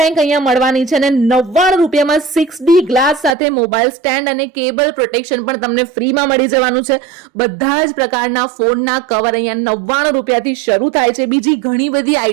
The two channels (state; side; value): drops out; left; at 3.4 s